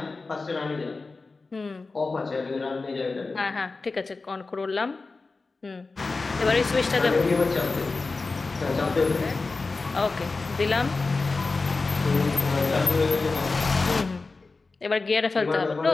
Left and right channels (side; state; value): right; quieter; 3.8 dB